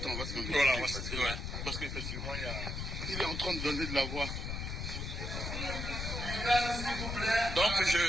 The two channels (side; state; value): left; noise; rumble, 4 dB below the sound